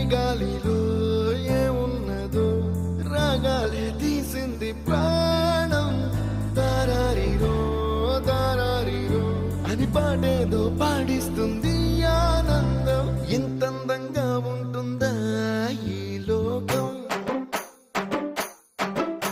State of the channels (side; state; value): both; identical; correlation 1.00